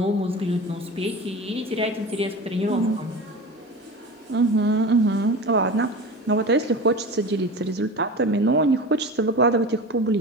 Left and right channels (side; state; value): both; normal; correlation 0.32